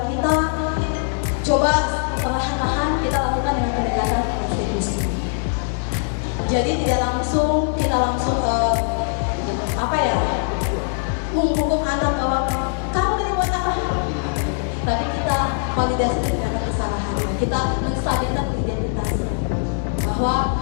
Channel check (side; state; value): right; silent; digital silence